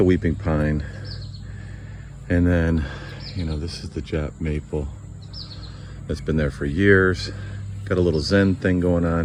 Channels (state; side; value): identical; both; correlation 1.00